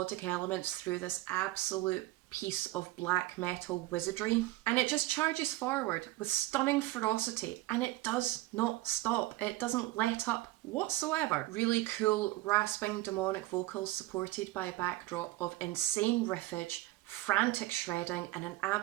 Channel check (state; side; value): quieter; left; 18.0 dB